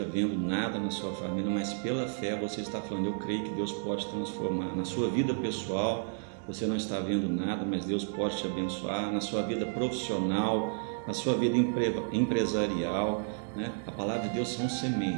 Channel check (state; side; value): silent; left; digital silence